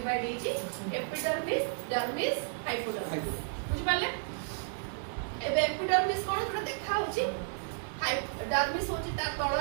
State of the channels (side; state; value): left; silent; digital silence